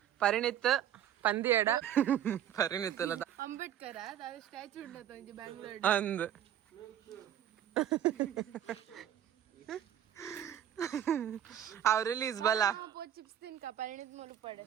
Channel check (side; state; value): left; quieter; 10.5 dB